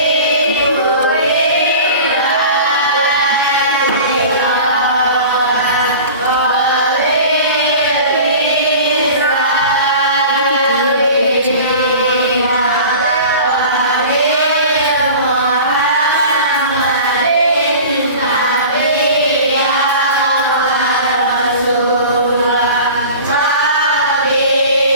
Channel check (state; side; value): inverted; both; correlation -0.39